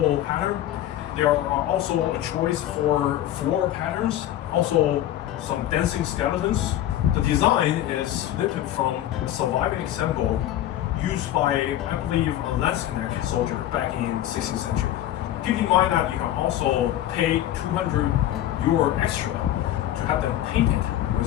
pattern. There are also a choice for floral patterns, also some dancing skeletons. The design is lifted from a surviving example used by, I believe, a Landsknecht soldier back in 16th century. Keep in mind that you can also pay 200 euro extra to have them painted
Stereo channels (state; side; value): quieter; right; 12.8 dB